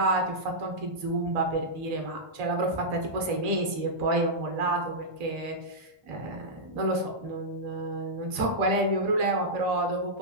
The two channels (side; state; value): left; late; 1.8 ms